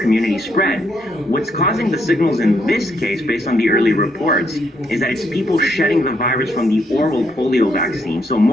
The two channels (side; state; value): both; normal; correlation 0.75